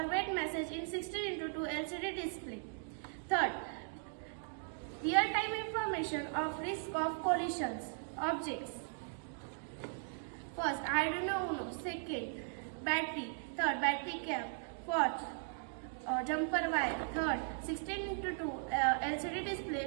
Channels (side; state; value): left; silent; digital silence